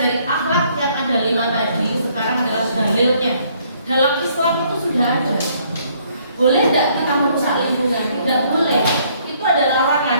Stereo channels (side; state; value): both; inverted; correlation -0.65